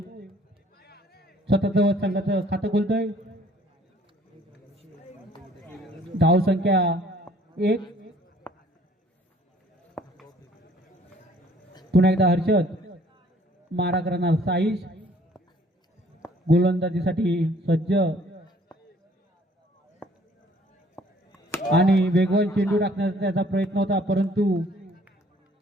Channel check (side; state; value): both; normal; correlation 0.58